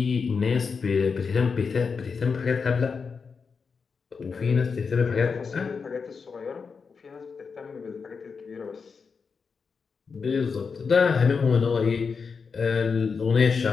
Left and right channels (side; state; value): right; quieter; 5.4 dB